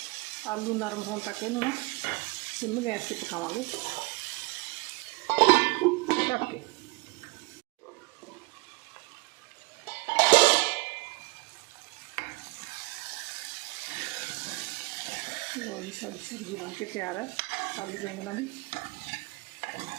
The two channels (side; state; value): left; quieter; 25.6 dB